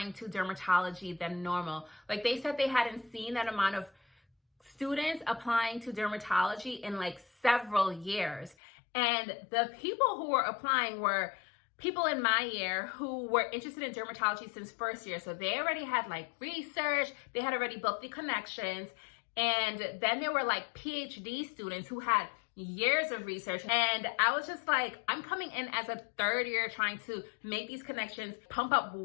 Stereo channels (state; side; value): drops out; right; at 8.6 s